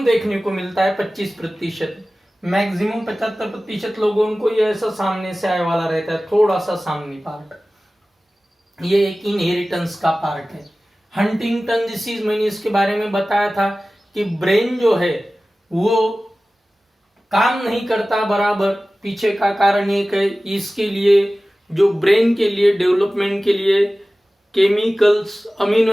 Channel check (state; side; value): normal; both; correlation 0.97